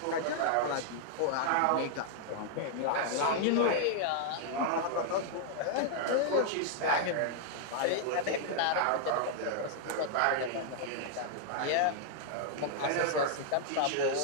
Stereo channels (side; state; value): both; different; correlation -0.01